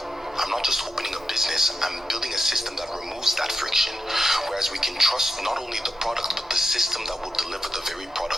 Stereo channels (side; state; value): both; normal; correlation 0.88